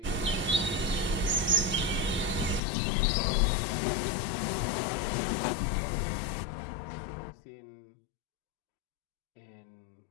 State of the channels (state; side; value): drops out; right; at 2.6 s